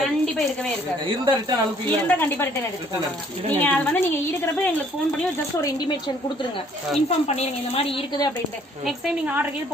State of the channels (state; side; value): normal; both; correlation 0.61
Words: கண்டிப்பா இருக்கவே இருக்காது. இருந்தா ரிட்டர்ன் அனுப்பி இருந்தா கண்டிப்பா ரிட்டர்ன் எடுத்துக்கோங்க. நீங்க அது வந்து நீங்க இருக்கிறப்ப எங்களுக்கு ஃபோன் பண்ணி ஜஸ்ட் ஒரு இன்டிமேஷன் கொடுத்துருங்க, இன்ஃபார்ம் பண்ணிருங்க இந்த மாதிரி இருக்குது அப்படின்ட்டு. நெக்ஸ்ட் டைம் நீங்க ஆர்டர் கீழ்